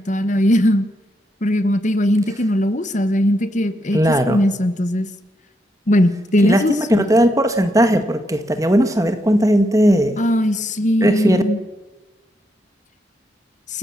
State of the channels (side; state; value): both; normal; correlation 0.80